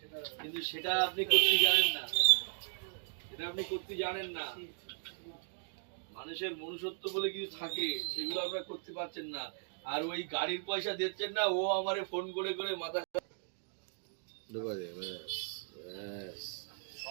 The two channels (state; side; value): silent; left; digital silence